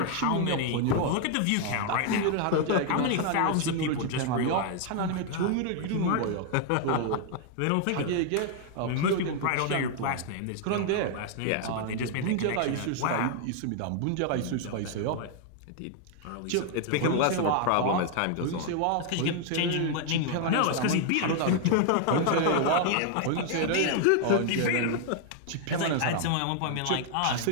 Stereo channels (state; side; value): different; both; correlation 0.00